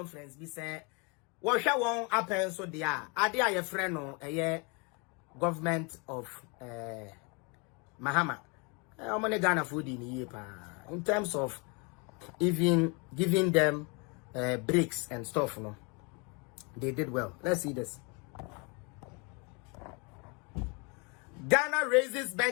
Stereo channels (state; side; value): quieter; right; 31.7 dB